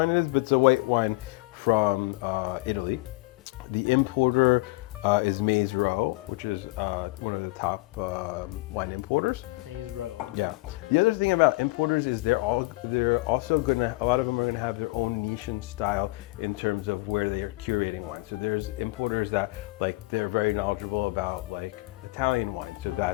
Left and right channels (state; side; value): quieter; right; 23.2 dB